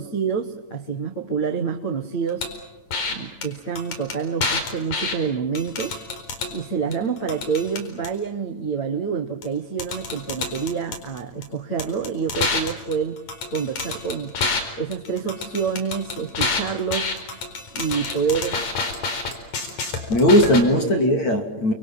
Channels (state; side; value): late; right; 8.9 ms